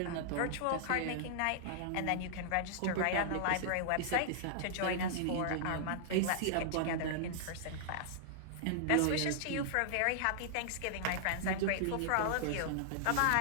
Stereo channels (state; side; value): different; both; correlation -0.01